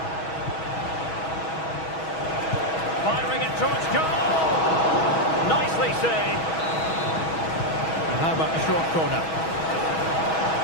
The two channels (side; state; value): right; late; 6.2 ms